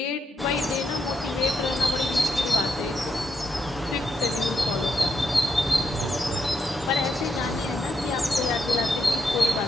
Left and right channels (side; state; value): both; normal; correlation 0.81